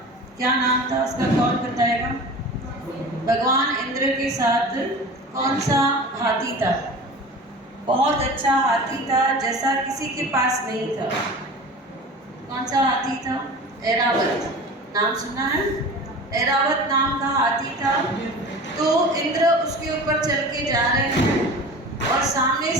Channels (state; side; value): normal; both; correlation 0.36